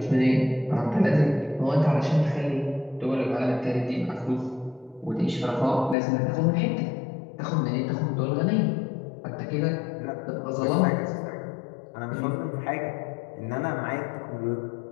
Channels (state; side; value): drops out; right; at 6.0 s